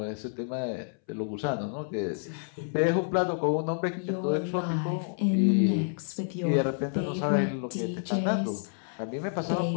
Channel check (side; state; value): right; silent; 58 dB below the other